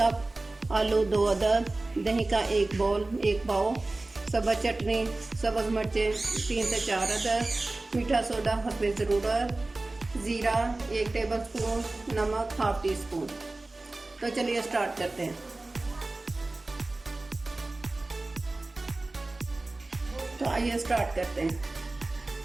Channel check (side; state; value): left; quieter; 3.0 dB